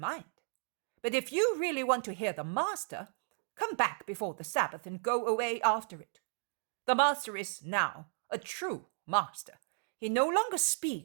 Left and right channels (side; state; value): left; silent; digital silence